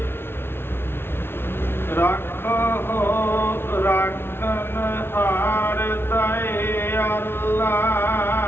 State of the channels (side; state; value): right; late; 0.11 ms